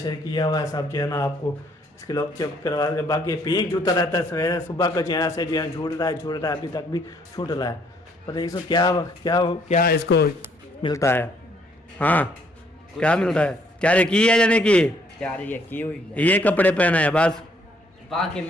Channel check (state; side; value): normal; both; correlation 0.66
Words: किया हुआ है। सब जो है ना आपको इसके लोग चेक करवा के, बाकी पिंक जूता रहता है सवेरे सुबह का जो है से जो है झूठ रहा है अभी तक भी छूट रहा है। पता इसको क्या क्या क्या इसको मिलता है? हाँ क्या मिलता है? तैयारी की है यानी कि यार ये की हुई है, ये कपड़े पहना है बस, बाकी